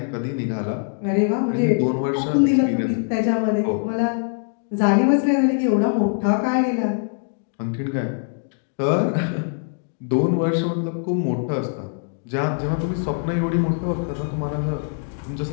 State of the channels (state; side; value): silent; right; 61 dB below the other